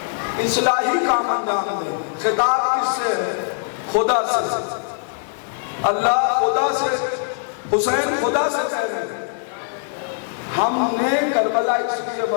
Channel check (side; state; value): right; silent; digital silence